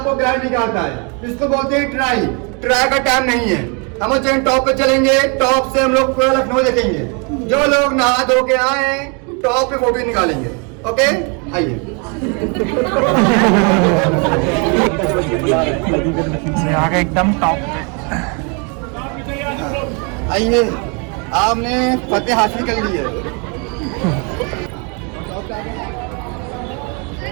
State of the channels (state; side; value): quieter; left; 34.4 dB